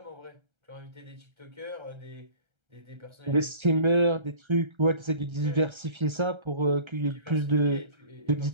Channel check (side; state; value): left; late; 1.3 ms